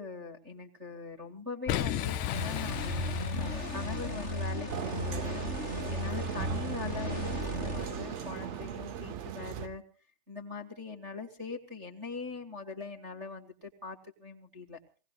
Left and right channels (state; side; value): late; left; 3.4 ms